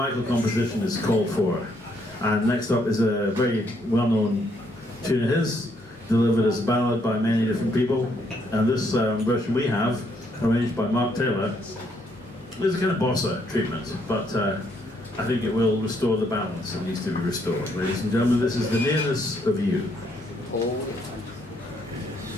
composition is called for, and next up is a very well-known tune of his, delivered as a ballad by many different people, and this version we have, arranged by Mark Taylor, is a kind of bossa treatment, but I think it will restore the balance that needs to be restored. Ladies and gentlemen, this is The Nearness of You.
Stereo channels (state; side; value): normal; both; correlation 0.72